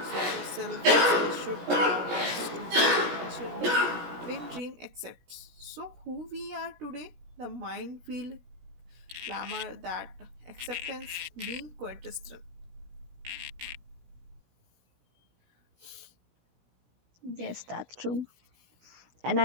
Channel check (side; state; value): left; late; 17 ms